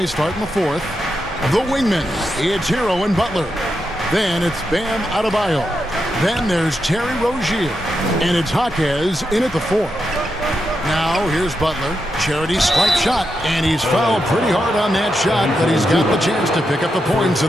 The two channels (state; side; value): normal; both; correlation 0.85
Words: starting the fourth. The wingmen, it's Hero and Butler. Then it's Bam Adebayo. Then there's Terry Rozier. And it's Jaquez in at the fourth. Now here's Butler. Charity stripe shot. And he's fouled pretty hard on that shot, but he's got the chance to pick up the points